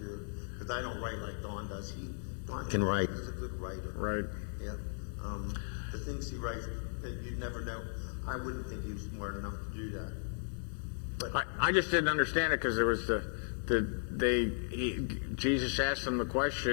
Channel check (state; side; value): silent; right; 54 dB below the other